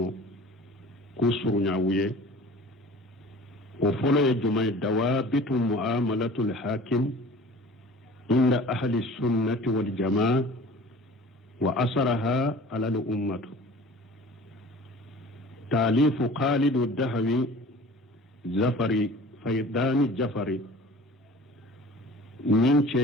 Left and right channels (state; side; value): normal; both; correlation 0.44